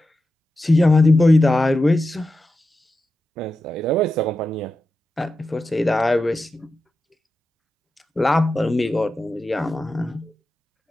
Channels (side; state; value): both; normal; correlation 0.90